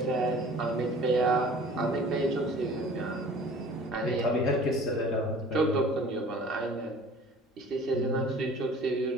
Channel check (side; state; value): both; normal; correlation 0.47